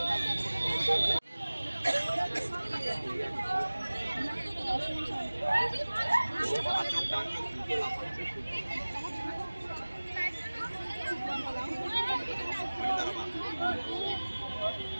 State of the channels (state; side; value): inverted; both; correlation -1.00